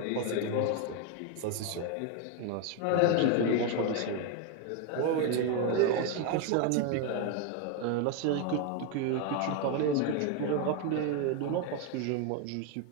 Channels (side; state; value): both; different; correlation 0.01